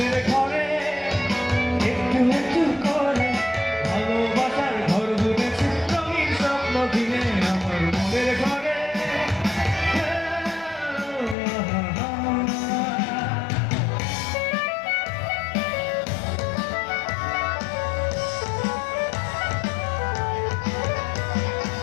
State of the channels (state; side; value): drops out; right; at 11.4 s